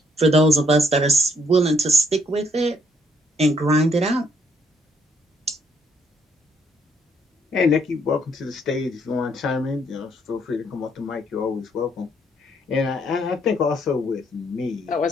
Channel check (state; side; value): normal; both; correlation 0.69